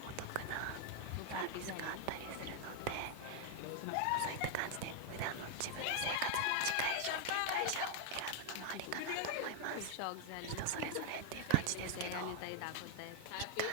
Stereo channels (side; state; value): both; different; correlation 0.00